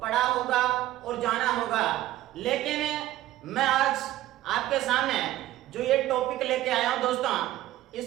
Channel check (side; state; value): left; quieter; 14.9 dB